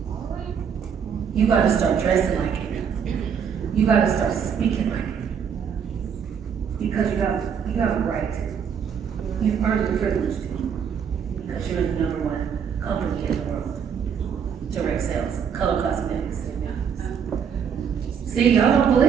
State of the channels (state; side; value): quieter; left; 7.4 dB